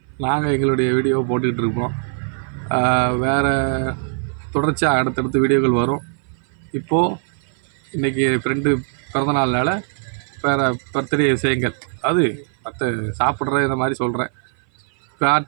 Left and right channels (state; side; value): silent; left; 58 dB below the other